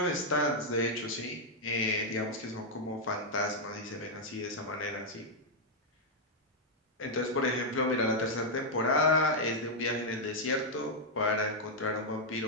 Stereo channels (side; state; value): both; normal; correlation -0.02